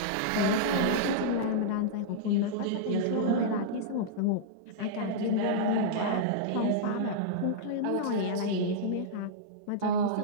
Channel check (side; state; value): both; different; correlation -0.03